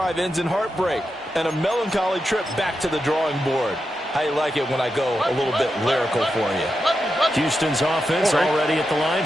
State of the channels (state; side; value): normal; both; correlation 0.88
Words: ends in heartbreak and a melancholy trip back to the drawing board. How you like it when I go a little bit lyrical for you? Houston's offense already at the line,